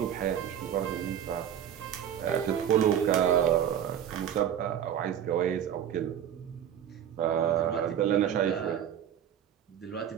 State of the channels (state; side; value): quieter; left; 9.7 dB